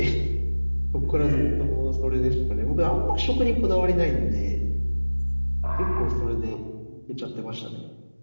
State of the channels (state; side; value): inverted; both; correlation -1.00